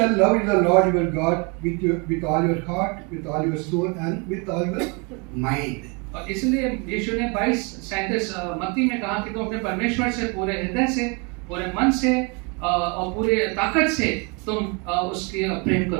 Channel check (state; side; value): quieter; left; 31.8 dB